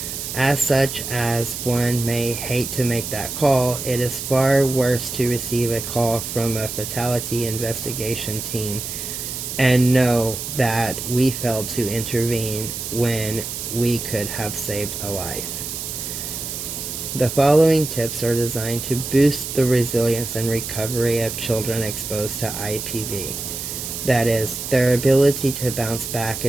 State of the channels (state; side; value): noise; right; hiss, 6 dB below the sound